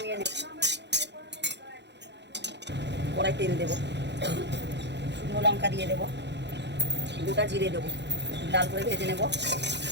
নেব। কড়াই তেল দেবো, শুকনো লঙ্কা দিয়ে দেবো, গোটা জিরে দেবো, লাল করে ভেজে নেব।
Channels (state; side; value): late; left; 0.50 ms